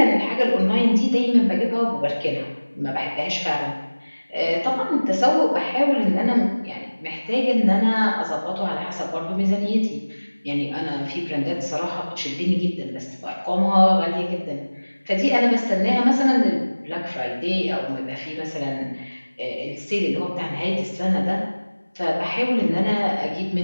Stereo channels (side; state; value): both; inverted; correlation -1.00